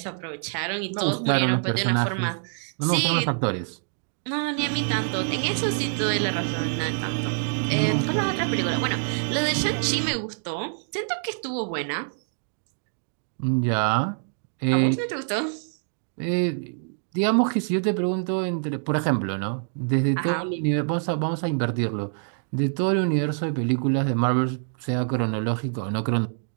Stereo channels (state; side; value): silent; left; digital silence